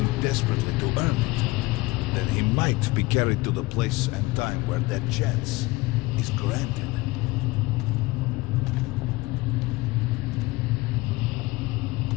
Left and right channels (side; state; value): right; quieter; 21.4 dB